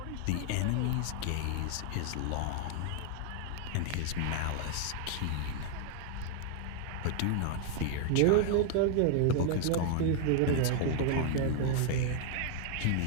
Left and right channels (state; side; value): different; both; correlation 0.00